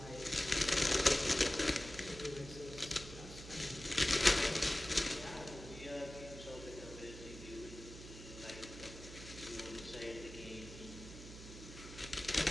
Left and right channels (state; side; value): noise; right; hum, 13 dB below the sound